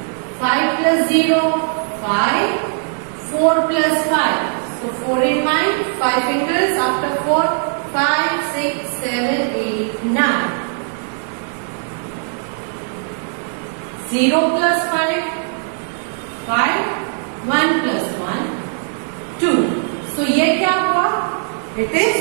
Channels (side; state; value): left; silent; 64 dB below the other